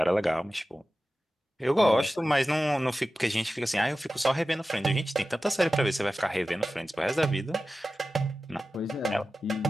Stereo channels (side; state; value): both; normal; correlation 0.94